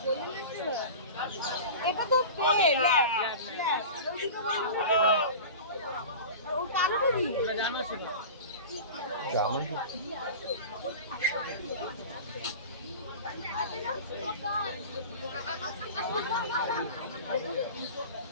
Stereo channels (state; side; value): inverted; both; correlation -0.33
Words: এটা তো পেট। ও কালোটা দি। এটা জানো সেটা? জানো